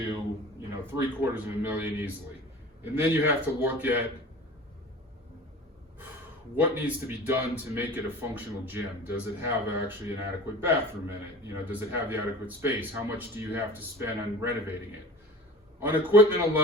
$750,000 easily. And then you have to look at what needs to be done to make it a functional gym. Does it have actually an adequate bathroom in it? Does it have the adequate space? How much do you have to spend on renovating it? On equipment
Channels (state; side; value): normal; both; correlation 0.39